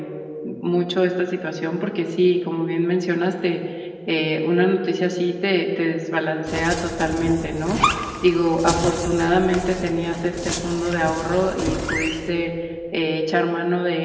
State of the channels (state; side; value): identical; both; correlation 1.00